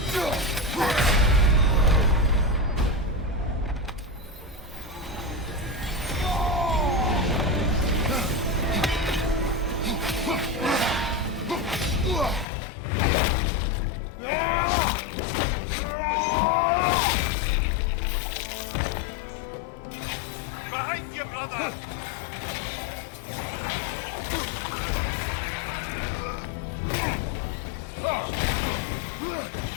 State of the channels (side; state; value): right; drops out; at 12.5 s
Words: behind you, brother!